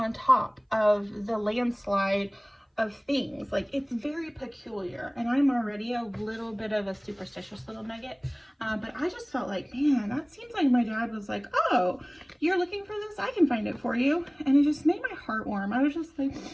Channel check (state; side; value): identical; both; correlation 1.00